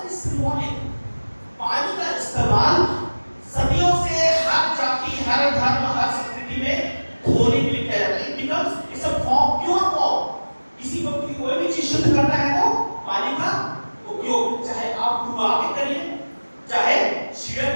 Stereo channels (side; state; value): both; inverted; correlation -1.00